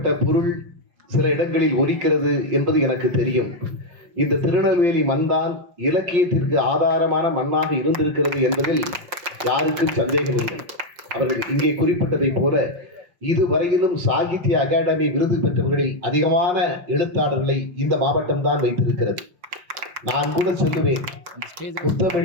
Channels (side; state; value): left; late; 5.7 ms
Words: பொருள் சில இடங்களில் ஒலிக்கிறது என்பது எனக்கு தெரியும். இந்த திருநெல்வேலி மண்தான் இலக்கியத்திற்கு ஆதாரமான மண்ணாக இருந்திருக்கிறது என்பதில் யாருக்கும் சந்தேகம் இல்லை. அவர்கள் இங்கே குறிப்பிட்டதை போல இதுவரையிலும் சாகித்ய அகாடமி விருது பெற்றவர்களில் அதிகமான எழுத்தாளர்களை இந்த மாவட்டம் தான் வைத்திருக்கிறது. நான் கூட சொல்லுவேன்,